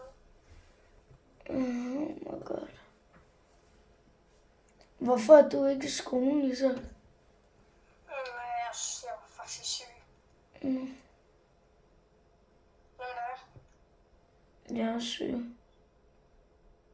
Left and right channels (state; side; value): identical; both; correlation 1.00